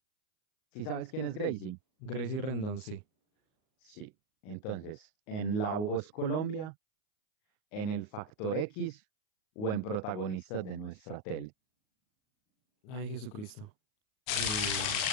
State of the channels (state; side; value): late; right; 38 ms